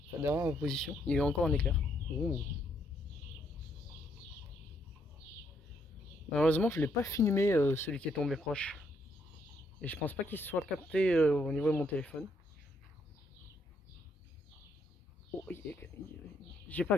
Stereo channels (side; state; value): both; normal; correlation 0.73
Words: Enfin, derrière ma position. Il y a eu encore un éclair. Ouh. Malheureusement, je l'ai pas filmé celui qui est tombé proche. Et je pense pas qu'il se soit capté au niveau de mon téléphone. Oh, j'ai pas